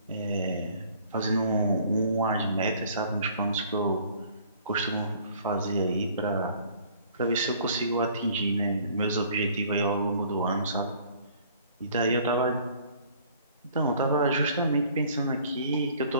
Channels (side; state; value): both; inverted; correlation -0.55